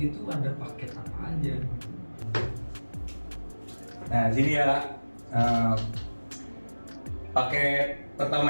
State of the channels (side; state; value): both; inverted; correlation -1.00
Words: tuh ada paket apa aja? Nah, di sini ya paket pertama